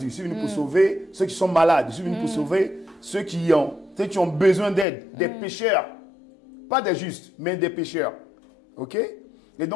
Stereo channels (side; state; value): right; drops out; at 4.9 s